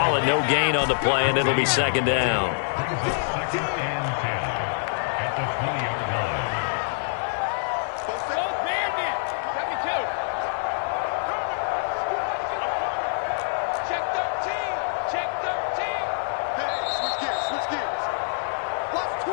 it no gain on the play, and it'll be 2nd down.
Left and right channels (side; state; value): right; silent; digital silence